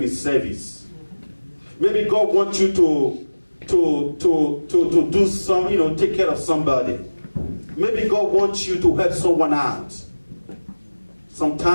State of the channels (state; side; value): inverted; both; correlation -1.00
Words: in service. Maybe God wants you to do some, take care of somebody. Maybe God wants you to help someone out.